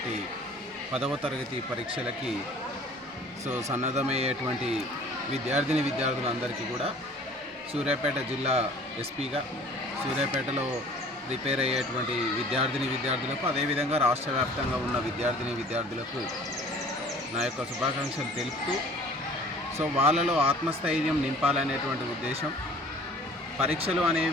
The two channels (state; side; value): normal; both; correlation 0.49